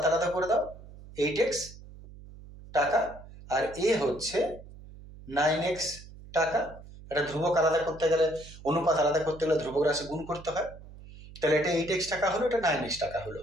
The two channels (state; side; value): noise; right; hum, 18 dB below the sound